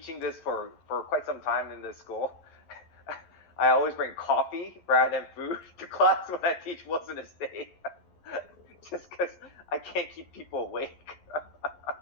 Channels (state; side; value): late; right; 11 ms